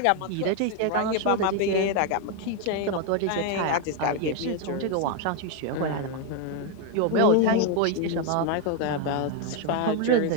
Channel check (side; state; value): both; different; correlation 0.01